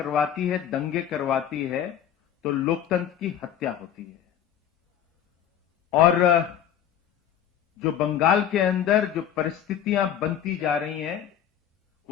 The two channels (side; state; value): right; quieter; 9.7 dB